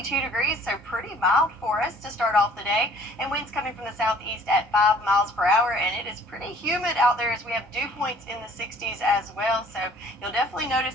degrees, so pretty mild for us to start off the day. And winds coming from the southeast at 5 miles per hour, and it is pretty humid out there as we have dew points in the 60s as well. So you'll definitely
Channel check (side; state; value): both; normal; correlation 0.55